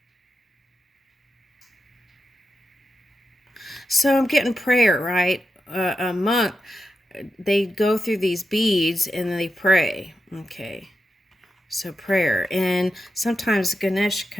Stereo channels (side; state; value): both; normal; correlation 0.89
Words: So I'm getting prayer, right? A monk, they go through these beads and they pray. Okay. So prayer. And sometimes Ganesh